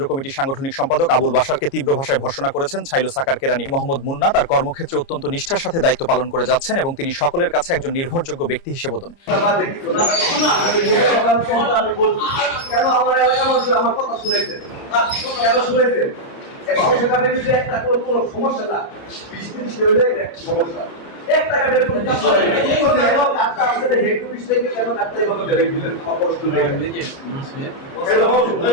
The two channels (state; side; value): late; right; 29 ms